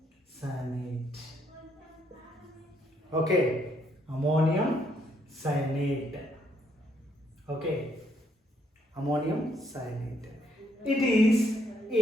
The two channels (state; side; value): normal; both; correlation 0.72